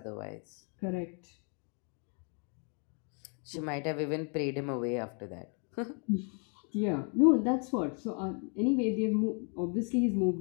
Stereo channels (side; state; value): right; quieter; 38.8 dB